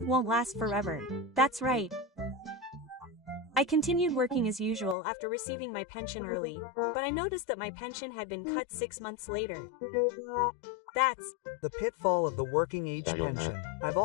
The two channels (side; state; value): right; drops out; at 5.0 s